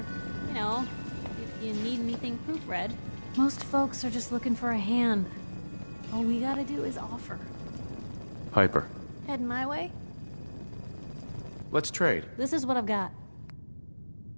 you know, if you need anything proofread. Most folks are just looking for a hand. All we gotta do is offer. Piper. Heading my way? Let's trade. This is what I've got.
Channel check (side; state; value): both; inverted; correlation -1.00